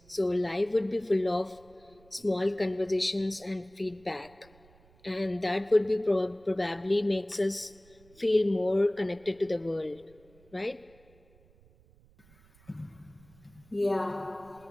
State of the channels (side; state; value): right; noise; rumble, 28 dB below the sound